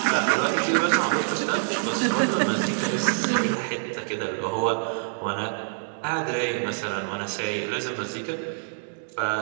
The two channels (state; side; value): silent; left; digital silence